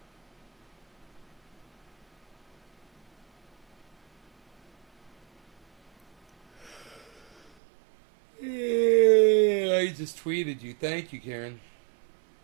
I just tweeted you. Thank you, Karen.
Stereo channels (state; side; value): drops out; left; at 7.5 s